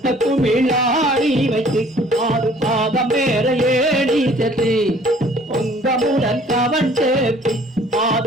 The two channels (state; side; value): normal; both; correlation 0.55